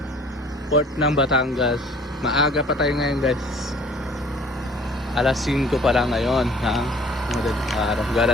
Port ng Batangas. Maaga pa tayo ngayon guys. Alas 5 pa lang ngayon ng madaling araw,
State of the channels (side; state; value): both; normal; correlation 0.53